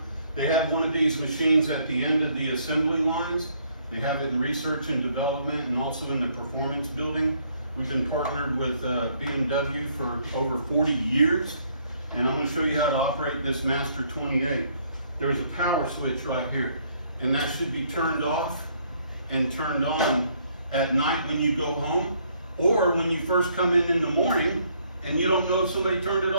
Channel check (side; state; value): both; inverted; correlation -0.67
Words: They have one of these machines at the end of the assembly lines. They have it in research and development and also in the performance building. We've been partnered with BMW for over 40 years. And I'm going to show you how to operate this Master 28. There's a power switch right here. And that should be turned off and turned on at night when you go home, or when you first come in the morning and you don't know if somebody turned it